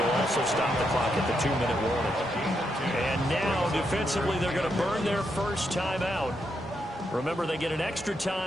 also stop the clock at the 2-minute warning. And now, defensively, they're going to burn their first timeout. Remember, they get an extra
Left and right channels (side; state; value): both; normal; correlation 0.81